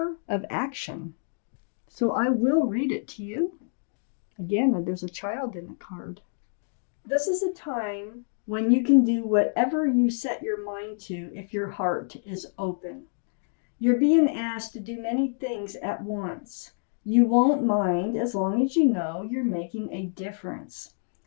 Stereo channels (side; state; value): right; silent; digital silence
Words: of Action. So I will read it to you. Again, there's a child in the card. This is a time when you can do whatever you set your mind to if your heart is open. You're being asked to do many things at once. You won't mind as long as you know you're making a difference.